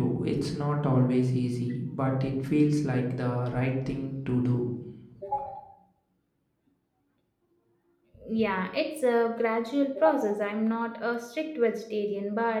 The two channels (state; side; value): identical; both; correlation 1.00